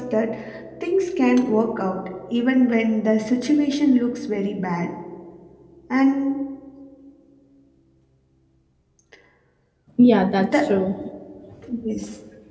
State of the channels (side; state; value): both; identical; correlation 1.00